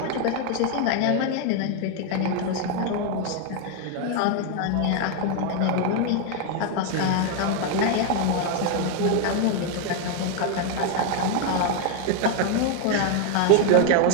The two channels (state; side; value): different; both; correlation 0.01